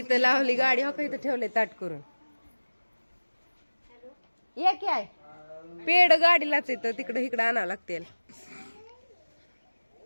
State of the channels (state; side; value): inverted; both; correlation -1.00